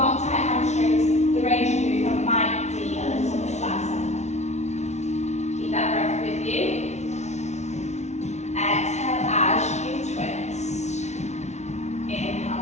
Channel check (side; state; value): right; late; 0.32 ms